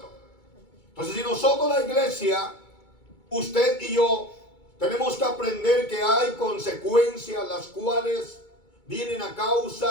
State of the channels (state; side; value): late; right; 2.2 ms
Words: Entonces, si nosotros, la iglesia, usted y yo, tenemos que aprender que hay consecuencias las cuales vienen a